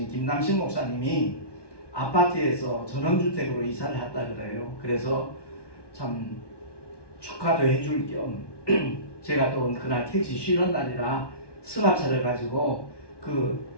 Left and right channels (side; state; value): right; late; 1.2 ms